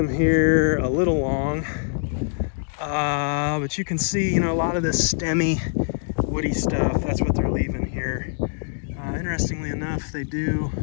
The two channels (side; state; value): right; silent; digital silence